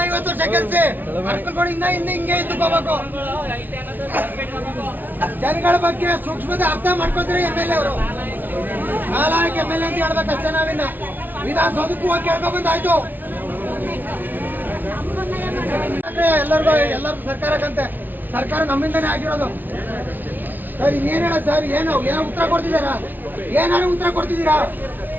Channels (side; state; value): left; late; 0.087 ms